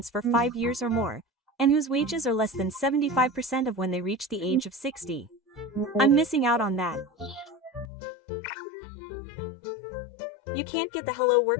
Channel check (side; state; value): right; drops out; at 7.9 s